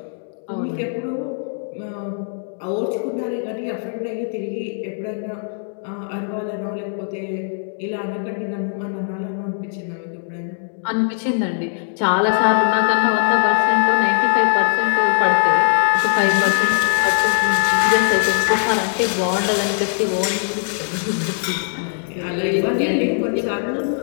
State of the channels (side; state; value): right; silent; digital silence